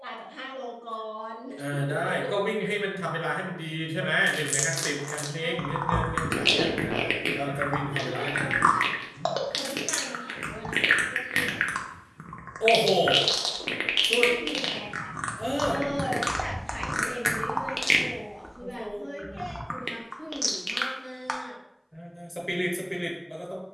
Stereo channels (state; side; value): identical; both; correlation 1.00